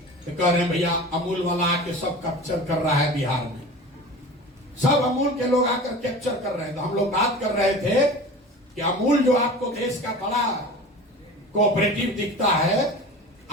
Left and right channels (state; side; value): normal; both; correlation 0.36